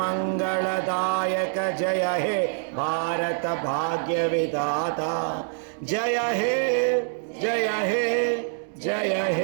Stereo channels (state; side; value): silent; left; 61 dB below the other